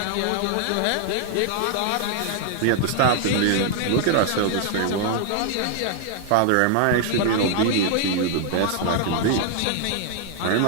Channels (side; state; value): both; different; correlation 0.00